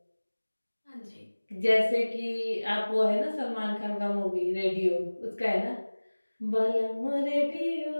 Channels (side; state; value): both; inverted; correlation -1.00